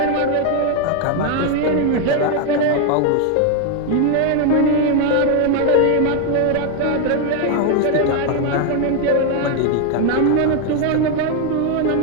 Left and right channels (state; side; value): different; both; correlation 0.01